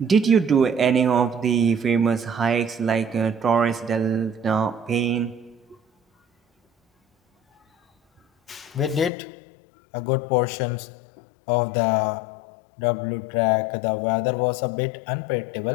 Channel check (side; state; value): right; drops out; at 9.1 s